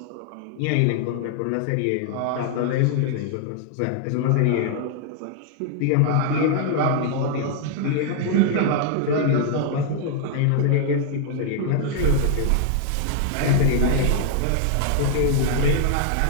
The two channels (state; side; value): different; both; correlation -0.01